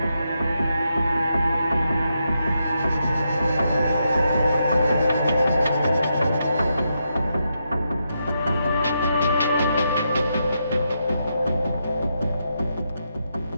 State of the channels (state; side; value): inverted; both; correlation -0.83